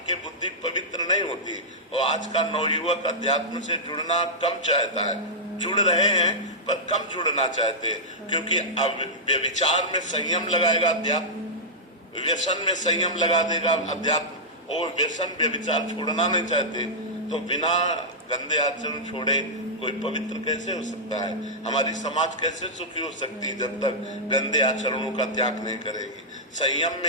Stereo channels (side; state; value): both; normal; correlation -0.09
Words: के बुद्धि पवित्र नहीं होती। और आज का नवयुवक अध्यात्म से जुड़ना कम चाहता है, जुड़ रहे हैं पर कम जुड़ना चाहते हैं, क्योंकि अब व्यभिचार में संयम लगाएगा अध्यात्म, व्यसन में संयम लगा देगा अध्यात्म, और व्यसन व्यभिचार छोड़ना नहीं चाहते। तो बिना गंदे आचरण छोड़े कोई पवित्र कैसे हो सकता है? हमारी समाज कैसे सुखी हो सकती है जब तक गंदे आचरणों का त्याग नहीं करेगी? संयम